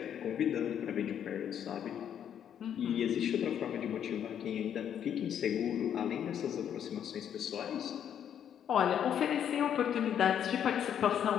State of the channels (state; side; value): quieter; right; 9.2 dB